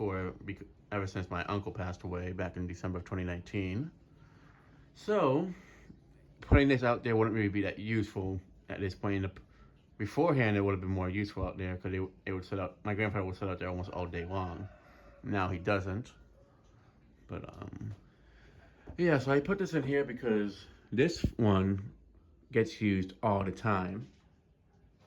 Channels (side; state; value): both; identical; correlation 1.00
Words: ever since my uncle passed away back in December of 2019. So, putting this out there wouldn't really be that useful at this point. Beforehand, it would have been more useful out there because it would sit out. My grandfather would sit out there almost all day long. Now he doesn't. But yeah. So I put this in here because this one gets used all the time.